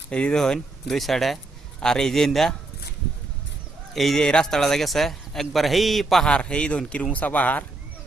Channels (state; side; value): quieter; left; 3.0 dB